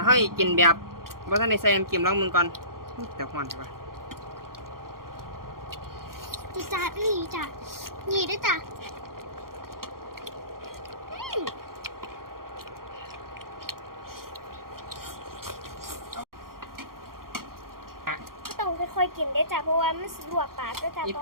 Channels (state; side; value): late; left; 0.92 ms